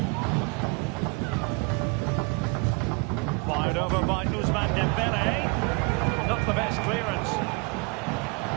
Fired over by Ousmane Dembele. Not the best clearance.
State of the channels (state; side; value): quieter; left; 30.6 dB